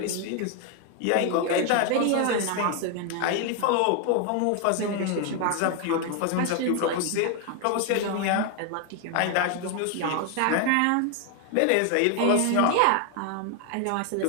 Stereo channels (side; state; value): both; different; correlation 0.01